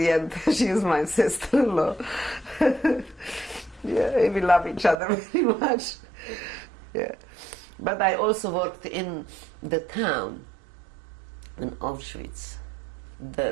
end, she is my sister-in-law. Yeah, we love each other very much. Yeah. But I also worked in the town, in Auschwitz.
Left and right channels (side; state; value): left; drops out; at 5.0 s